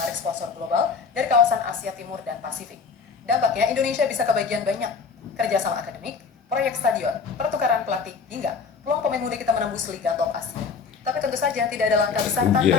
sponsor global dari kawasan Asia Timur dan Pasifik. Dampaknya, Indonesia bisa kebagian banyak. Kerjasama akademik, proyek stadion, pertukaran pelatih, hingga peluang pemain muda kita menembus Liga Top Asia. Tapi tentu saja tidak ada langkah besar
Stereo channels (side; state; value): right; quieter; 5.4 dB